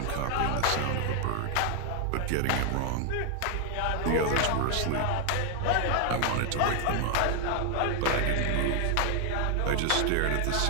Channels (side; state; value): both; different; correlation 0.00